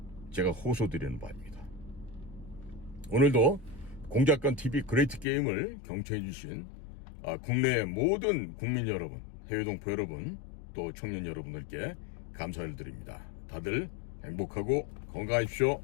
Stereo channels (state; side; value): drops out; right; at 5.2 s